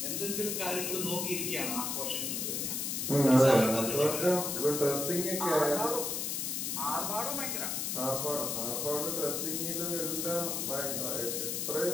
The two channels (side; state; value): left; noise; hiss, 1 dB below the sound